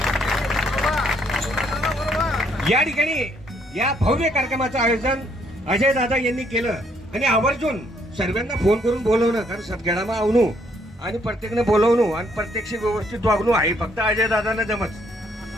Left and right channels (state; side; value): normal; both; correlation 0.69